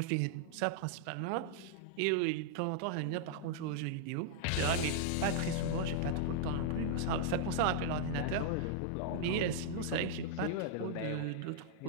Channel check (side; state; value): both; different; correlation -0.01